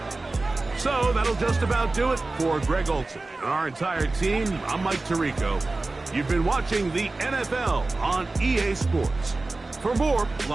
So that'll just about do it for Greg Olson and our entire team. I'm Mike Tirico. You've been watching the NFL on EA Sports. For more,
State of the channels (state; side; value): quieter; left; 3.2 dB